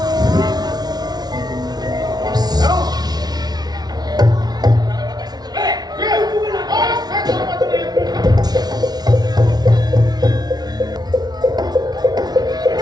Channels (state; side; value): late; left; 0.19 ms